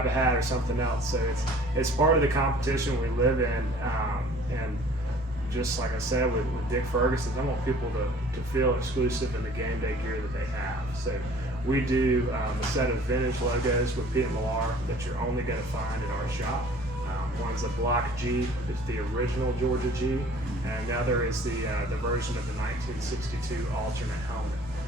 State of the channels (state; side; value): normal; both; correlation 0.51